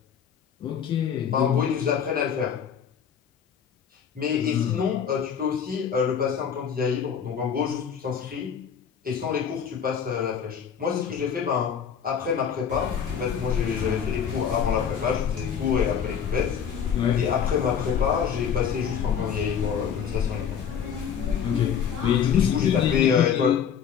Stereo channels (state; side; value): quieter; right; 7.6 dB